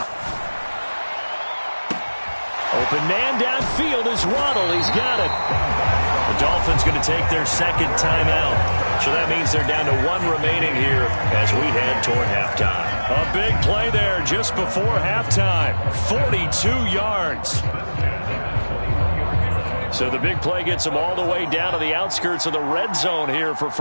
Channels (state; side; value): inverted; both; correlation -1.00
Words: Open man downfield is Waddle. He's got it. The Dolphins going to take their second timeout. So that means they're down to 1 remaining here as we head toward halftime. A big play there just before halftime. 42 yards. So the big play gets them all the way down to the outskirts of the red zone here for